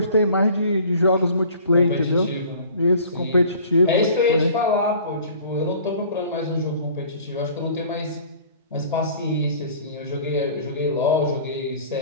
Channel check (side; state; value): both; inverted; correlation -0.48